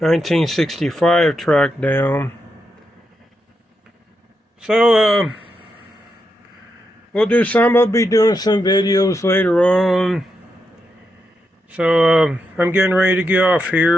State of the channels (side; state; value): both; normal; correlation 0.84